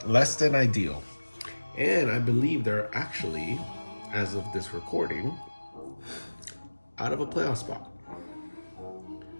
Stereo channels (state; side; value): inverted; both; correlation -1.00